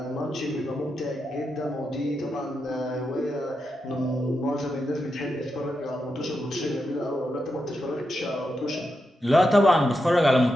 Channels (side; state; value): both; normal; correlation 0.86